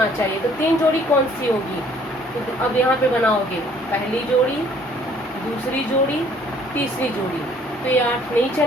चाहिए। तो 3 जोड़ी कौन सी होगी? तो अब यहाँ पे बनाओगे पहली जोड़ी, दूसरी जोड़ी, तीसरी जोड़ी, तो ये 8 नहीं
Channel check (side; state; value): both; normal; correlation 0.59